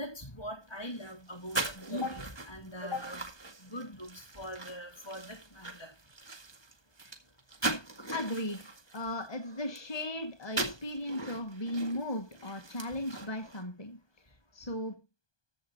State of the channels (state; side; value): late; right; 1.2 ms